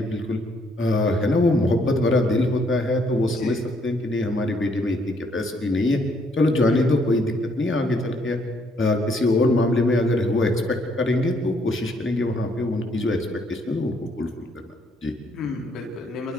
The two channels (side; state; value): both; normal; correlation 0.69